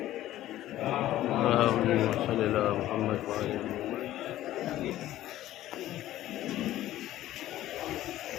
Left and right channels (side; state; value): right; quieter; 14.1 dB